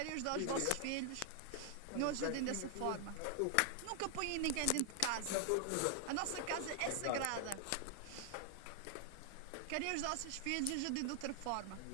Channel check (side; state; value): both; different; correlation 0.00